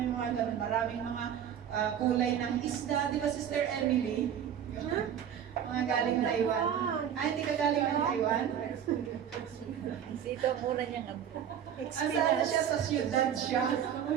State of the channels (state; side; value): quieter; left; 9.1 dB